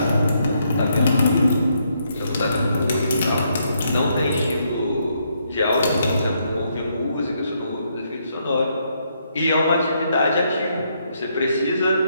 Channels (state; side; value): inverted; both; correlation -0.75